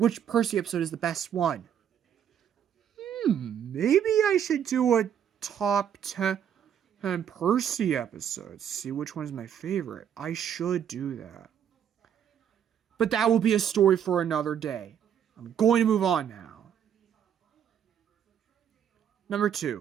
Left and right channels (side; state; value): left; quieter; 9.0 dB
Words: Percy episode is the best one? Maybe I should do a top 10 Percy episodes. See which one is my favorite. I should do that. But that will be a story for another day. I'm going to move on now. Number